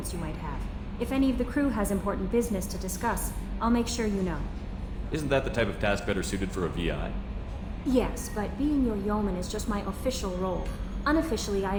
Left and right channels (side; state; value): both; identical; correlation 1.00